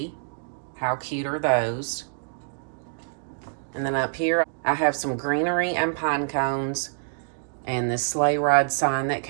How cute are those? And then up here, I have some greenery and pine cones and this sleigh ride sign that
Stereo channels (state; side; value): silent; left; digital silence